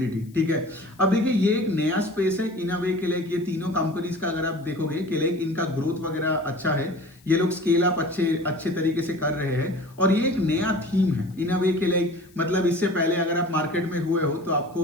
ठीक है, अब देखिए ये एक नया स्पेस है इन अ वे के लिए। ये तीनों कंपनीज का अगर आप देखोगे कि लाइक इनका ग्रोथ वगैरह अच्छा है, ये लोग स्केल अप अच्छे तरीके से कर रहे हैं, और ये एक नया थीम है इन अ वे के लिए। मतलब इससे पहले अगर आप मार्केट में हुए हो तो आपको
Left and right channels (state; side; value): noise; left; hiss, 29 dB below the sound